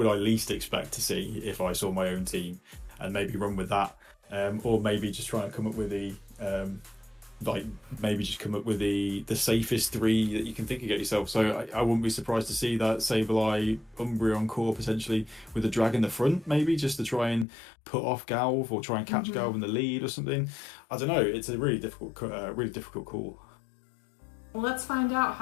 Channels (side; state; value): right; drops out; at 17.4 s